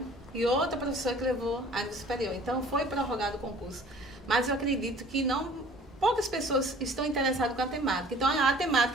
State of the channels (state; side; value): normal; both; correlation 0.51